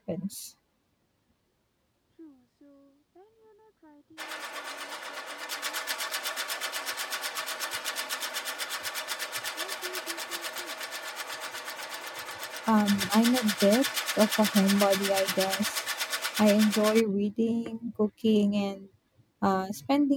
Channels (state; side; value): identical; both; correlation 1.00